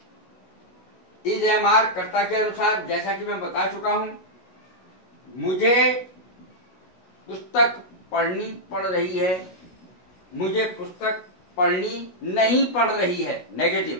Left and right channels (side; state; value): right; late; 16 ms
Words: इज एम आर कर्ता के अनुसार। जैसा कि मैं बता चुका हूं, मुझे पुस्तक पढ़नी पड़ रही है, मुझे पुस्तक पढ़नी नहीं पड़ रही है,